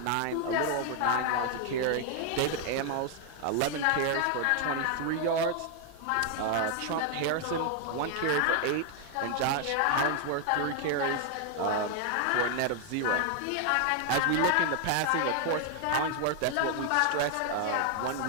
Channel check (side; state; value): both; different; correlation 0.00